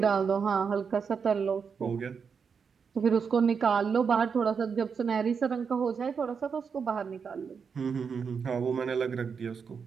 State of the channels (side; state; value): left; quieter; 6.1 dB